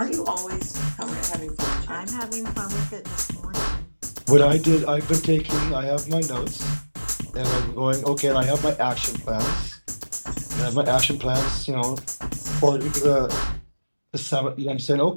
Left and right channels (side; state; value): both; inverted; correlation -1.00